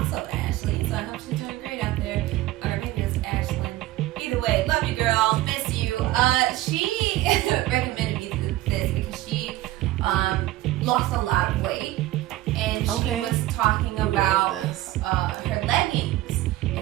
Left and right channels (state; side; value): quieter; left; 16.3 dB